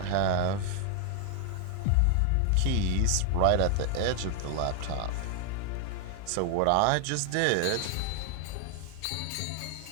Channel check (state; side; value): different; both; correlation 0.00